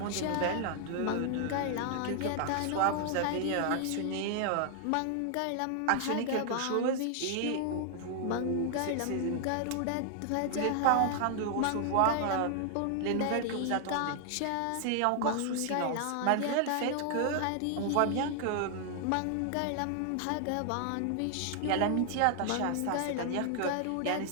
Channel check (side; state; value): both; different; correlation 0.00